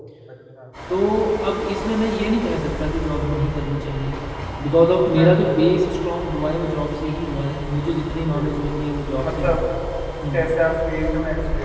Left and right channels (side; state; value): both; identical; correlation 1.00